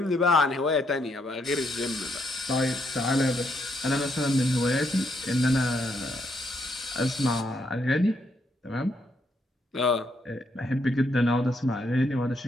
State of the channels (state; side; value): normal; both; correlation 0.76